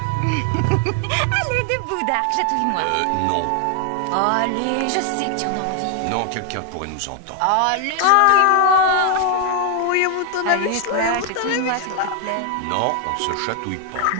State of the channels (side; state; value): both; different; correlation 0.00